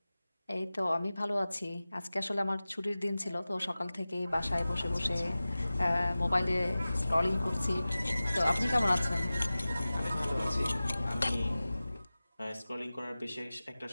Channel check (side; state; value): both; inverted; correlation -0.97